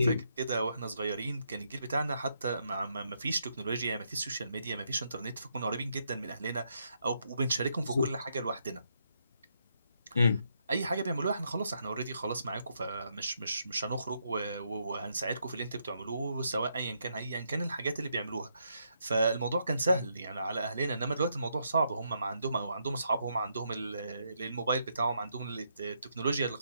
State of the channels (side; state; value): both; inverted; correlation -0.77